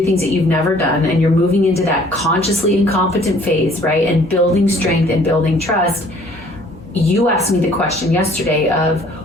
things that you've never done, and you're moving into that consciously incompetent phase, right? And building strength and building trust. You asked me the question yesterday of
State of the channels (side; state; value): both; normal; correlation 0.56